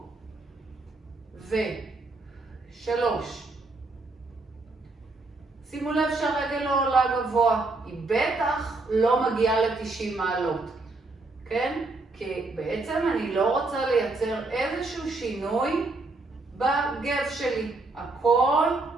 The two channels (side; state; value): left; quieter; 3.3 dB